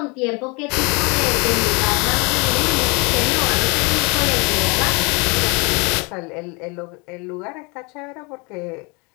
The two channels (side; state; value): right; quieter; 29.6 dB